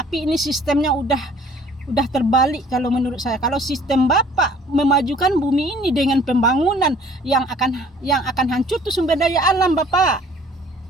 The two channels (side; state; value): both; normal; correlation 0.54